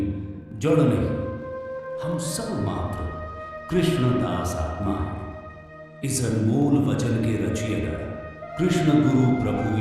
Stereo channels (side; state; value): both; identical; correlation 1.00